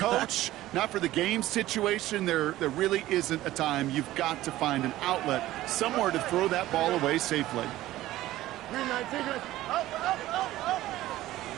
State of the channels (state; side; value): quieter; left; 15.5 dB